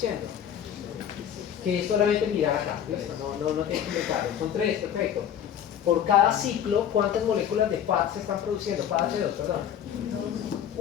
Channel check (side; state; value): right; quieter; 9.3 dB